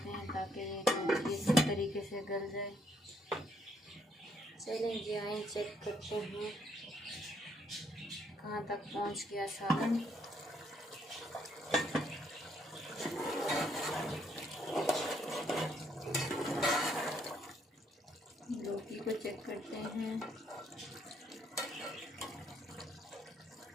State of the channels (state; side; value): normal; both; correlation 0.70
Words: हैं ताकि ये इसी तरीके से गल जाए। चलें जी आए चेक करते हैं कहाँ तक पहुँच गया सालन। लौकी को चेक करते हैं।